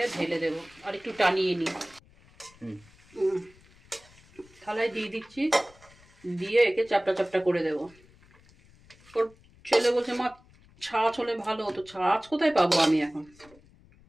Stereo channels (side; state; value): left; noise; rumble, 27 dB below the sound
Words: ঢেলে দেবো আর একটু টানিয়ে নিই। থালায় দিয়ে দিচ্ছি, দিয়ে একে চাপটা চাপটা করে দেবো। ওর ছেলে বলছে মা ছাঁচ হলে ভালো হতো। ছাঁচ কোথায় পাবো আমি এখন?